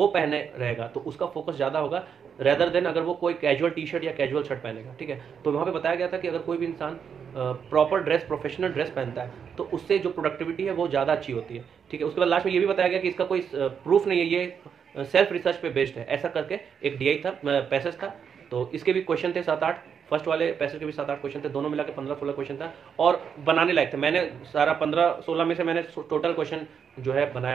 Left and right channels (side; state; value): left; quieter; 7.2 dB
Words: पहने रहेगा तो उसका फोकस ज़्यादा होगा रेदर देन अगर वो कोई कैजुअल टी शर्ट या कैजुअल शर्ट पहनेगा, ठीक है। तो वहाँ पे बताया गया था कि अगर कोई भी इंसान प्रॉपर ड्रेस, प्रोफेशनल ड्रेस पहनता है तो उससे जो प्रोडक्टिविटी है वो ज़्यादा अच्छी होती है, ठीक है। उसके बाद लास्ट में ये भी बताया गया कि इसका कोई प्रूफ नहीं है, ये सेल्फ रिसर्च पे बेस्ड है, ऐसा करके एक डीआई था, पैसेज था। तो इसके भी क्वेश्चन थे 7-8, फर्स्ट वाले पैसेज के भी 7-8 क्वेश्चन थे, दोनों मिला के 15-16 क्वेश्चन था, और बनाने लायक थे। मैंने सारा 15-16 में से मैंने टोटल क्वेश्चन जो है बनाया